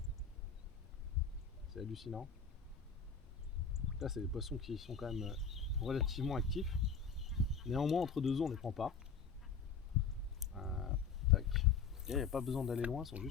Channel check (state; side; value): quieter; right; 5.9 dB